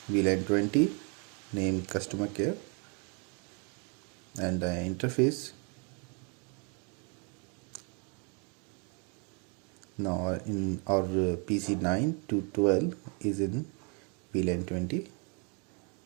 VLAN 20 name customer care, and the interface. Now in our PC 9 to 12 is in VLAN 20.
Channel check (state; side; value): quieter; left; 36.0 dB